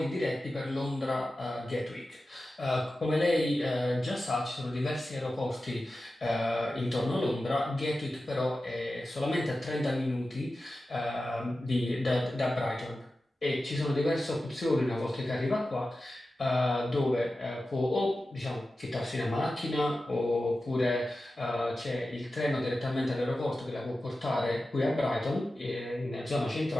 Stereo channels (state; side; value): normal; both; correlation 0.93